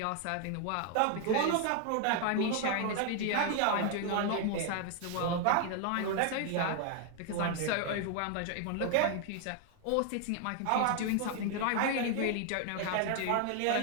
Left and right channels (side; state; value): both; different; correlation 0.00